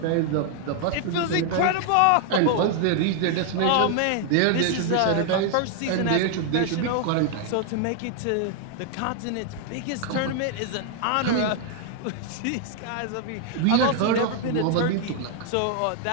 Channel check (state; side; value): different; both; correlation 0.00